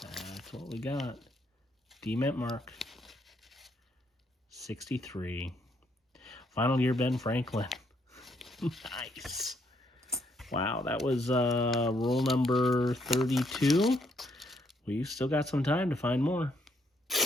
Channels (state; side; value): normal; both; correlation 0.72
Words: That's what we got. D-mint mark. 63. Final year Ben Franklin. Nice. Wow, that was roll number 32. We've still got some time to find more.